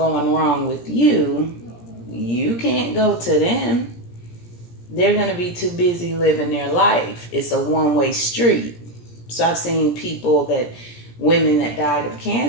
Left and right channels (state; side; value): late; right; 17 ms